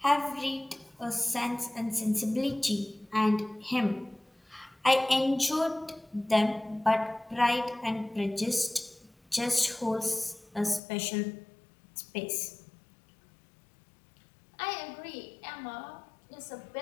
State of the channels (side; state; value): right; drops out; at 10.8 s